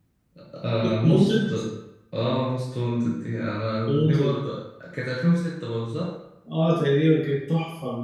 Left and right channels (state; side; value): identical; both; correlation 1.00